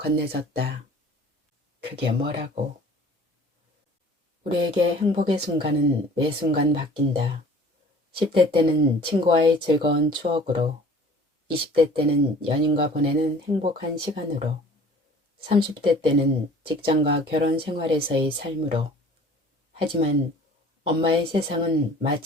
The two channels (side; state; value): both; normal; correlation 0.49